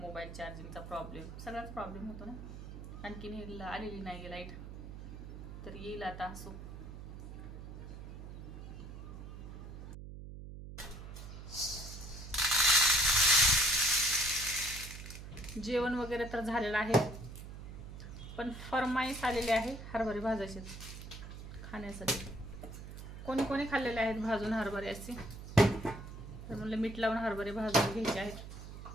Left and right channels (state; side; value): noise; right; hum, 11 dB below the sound